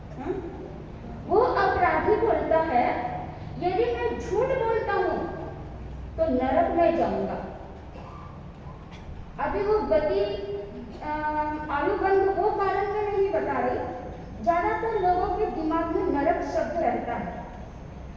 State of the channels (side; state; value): both; identical; correlation 1.00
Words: वो अपराधी बोलता है यदि मैं झूठ बोलता हूं तो नरक में जाऊंगा। अभी वो गति आयुबंध वो कारण में नहीं बता रही, ज्यादातर लोगों के दिमाग में नरक शब्द रहता है।